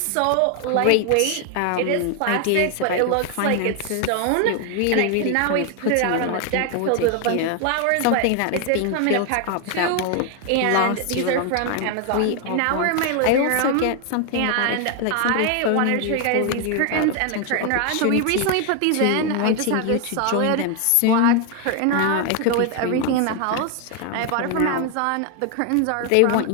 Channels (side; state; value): both; different; correlation 0.01